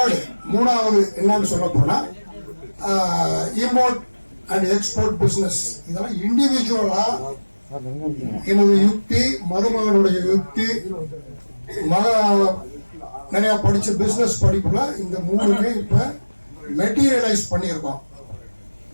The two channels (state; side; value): inverted; both; correlation -1.00